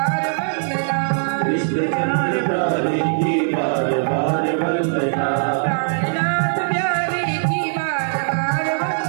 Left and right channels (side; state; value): left; silent; digital silence